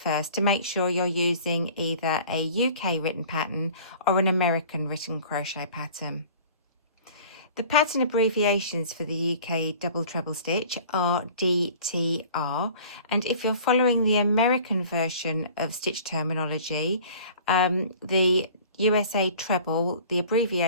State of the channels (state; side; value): inverted; both; correlation -0.47